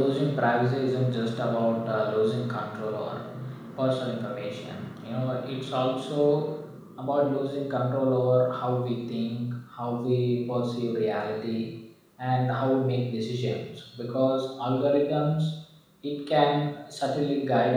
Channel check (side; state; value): both; identical; correlation 1.00